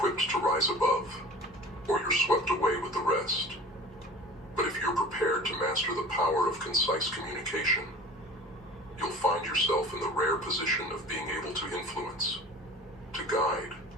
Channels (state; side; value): normal; both; correlation 0.41